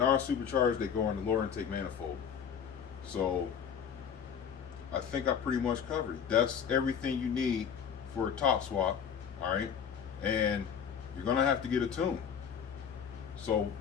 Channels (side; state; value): right; quieter; 7.7 dB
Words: they go in the lower intake manifold. So I think I pretty much covered it. That's everything you need for a top swap, all right? And you're gonna have to get a tune. So